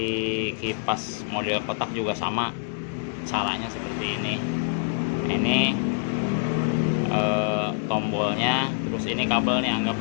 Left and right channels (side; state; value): right; silent; digital silence